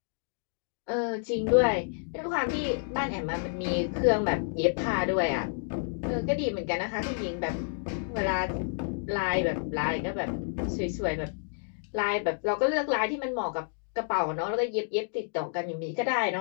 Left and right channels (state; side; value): silent; right; digital silence